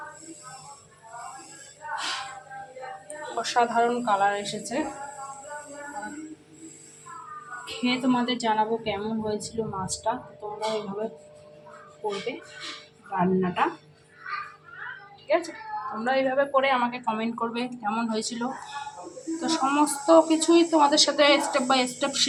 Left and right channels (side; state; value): both; identical; correlation 1.00